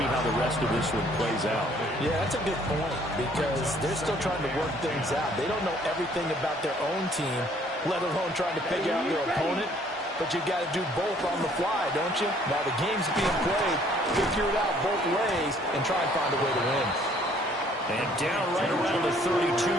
how the rest of this one plays out. Yeah, that's a good point because they're still trying to work things out. They don't know everything about their own team, let alone trying to figure out their opponent. But you got to do both on the fly, don't you? Now the game's being played, figure it out both ways, and try and find a way to win. And down right around the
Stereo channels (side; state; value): both; normal; correlation 0.61